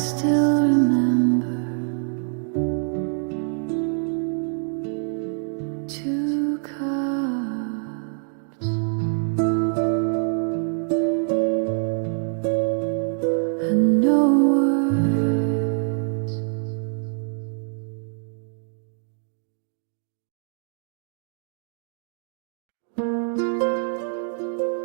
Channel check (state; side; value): silent; left; 62 dB below the other